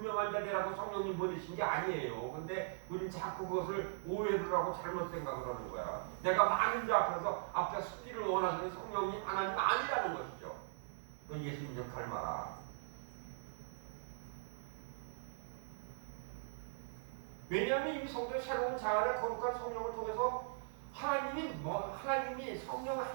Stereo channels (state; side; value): silent; left; 51 dB below the other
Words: 자리라고 성령님 보내신 게 아니에요. 근데 우리는 자꾸 그것을 오해를 하고 잘못 생각을 하는 거야. 내가 많은 자 앞에 서기를 원하시는 성령님 하나님 아니라는 것이죠. 너 예수님 좀 닮아라. 왜냐하면 이 성도의 새로운 자아의 거룩한 성령을 통해서 하나님이